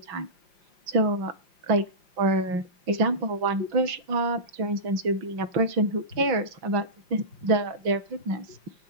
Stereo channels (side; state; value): left; late; 5.6 ms